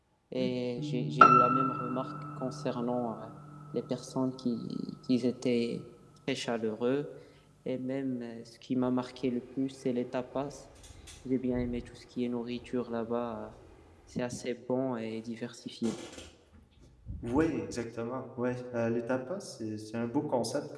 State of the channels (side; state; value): both; identical; correlation 1.00